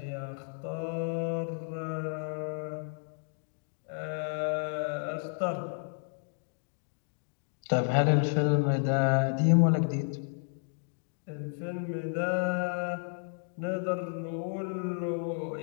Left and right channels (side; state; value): right; silent; 56 dB below the other